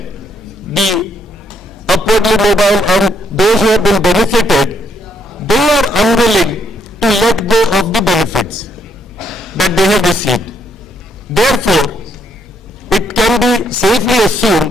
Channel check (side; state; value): both; normal; correlation 0.72